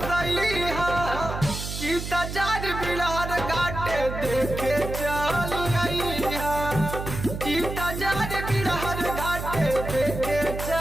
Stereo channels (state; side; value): noise; right; hum, 6 dB below the sound